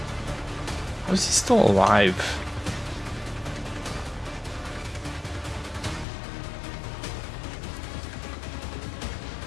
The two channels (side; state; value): right; drops out; at 6.1 s